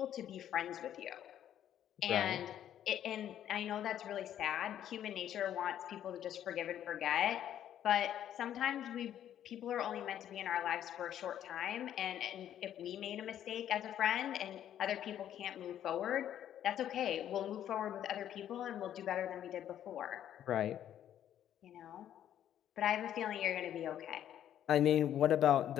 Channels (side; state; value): right; quieter; 10.7 dB